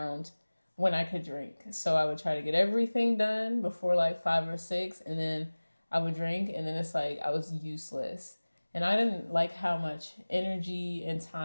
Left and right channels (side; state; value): both; inverted; correlation -1.00